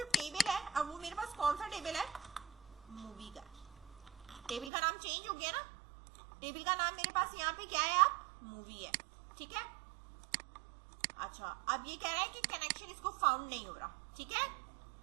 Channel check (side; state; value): left; drops out; at 4.7 s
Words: टेबल है, अब वो मेरे पास कौन सा टेबल है, मूवी का। टेबल का नाम चेंज हो गया ना, टेबल का नाम मेरे पास यहाँ पे क्या है, आप मूवी है, ठीक है। अच्छा, अब ये कह रहा है कि कनेक्शन इसको फाउंड नहीं हो रहा, ठीक है,